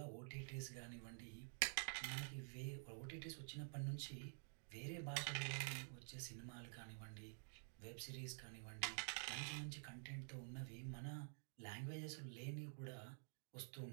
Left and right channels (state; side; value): silent; left; digital silence